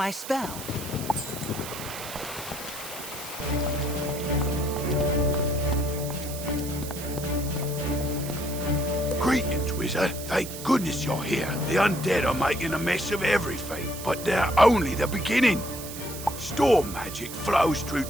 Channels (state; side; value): noise; right; hiss, 11 dB below the sound